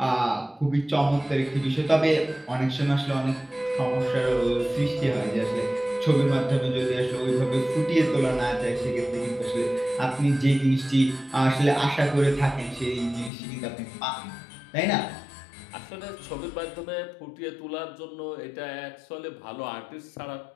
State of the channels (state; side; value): drops out; right; at 13.3 s